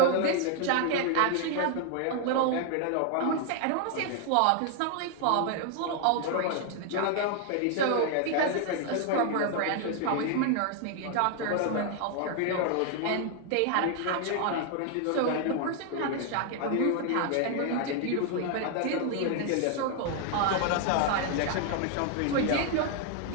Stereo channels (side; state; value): both; different; correlation 0.00